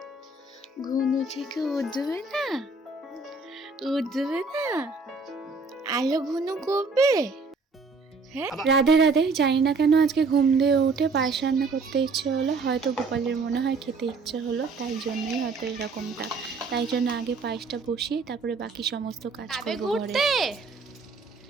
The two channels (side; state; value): left; quieter; 4.0 dB